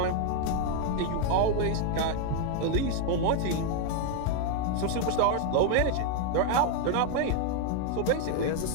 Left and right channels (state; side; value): different; both; correlation 0.00